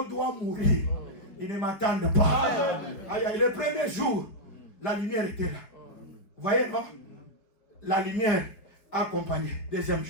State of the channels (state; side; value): late; right; 5.1 ms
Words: doit mourir. Ils ne m'attendent pas. Aïe, aïe, le premier jour, la lumière était là. Vous voyez, non? La lumière accompagnée. Deuxième